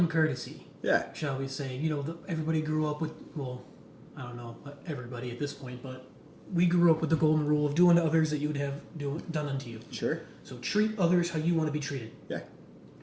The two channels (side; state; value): both; identical; correlation 1.00